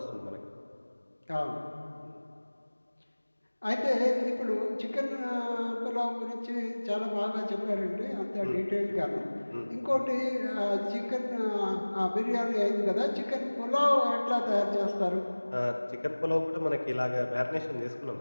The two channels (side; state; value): both; inverted; correlation -1.00